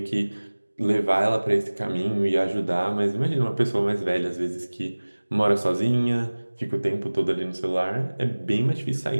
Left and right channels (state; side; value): inverted; both; correlation -1.00